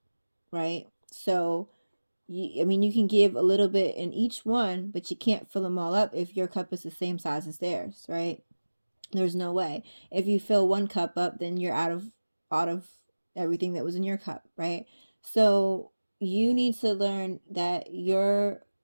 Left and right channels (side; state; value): both; inverted; correlation -1.00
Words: right? So, I mean, you can give a little bit in each one, but you can't fill them all up if your cup is the same size as theirs, right? There's no way. If you fill 1 cup up, then you're out of everything that was in your cup, right? So you need to learn that your